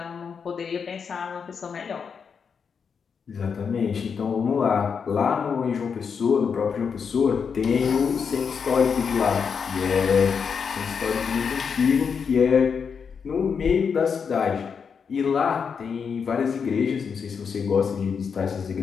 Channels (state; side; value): quieter; right; 6.3 dB